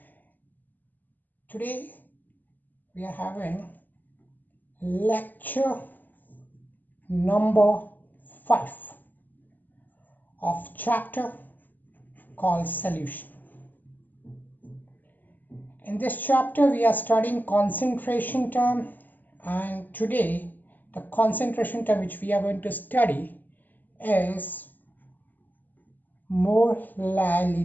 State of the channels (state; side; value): late; right; 0.086 ms